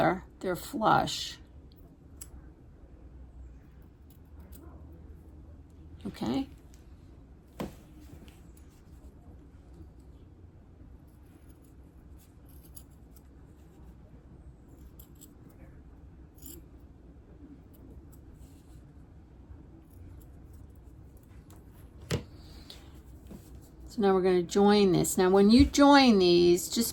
they're flush. Okay. Now we're going to join this. Now when you join these,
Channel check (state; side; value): identical; both; correlation 1.00